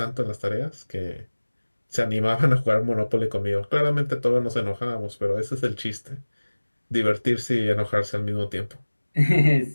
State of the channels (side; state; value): both; inverted; correlation -1.00